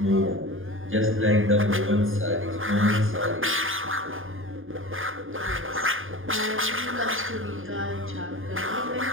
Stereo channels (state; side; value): late; left; 0.59 ms